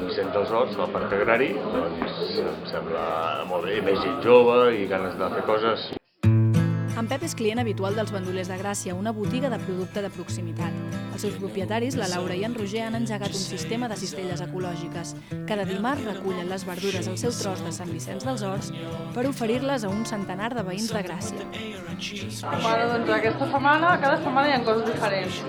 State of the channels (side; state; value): both; identical; correlation 1.00